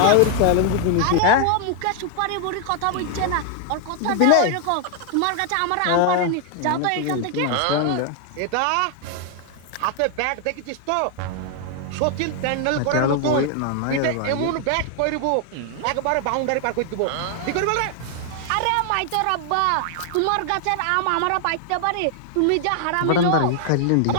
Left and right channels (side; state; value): both; different; correlation 0.00